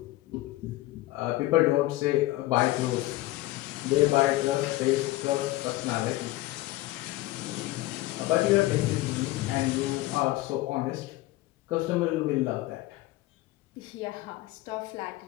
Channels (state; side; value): quieter; right; 17.7 dB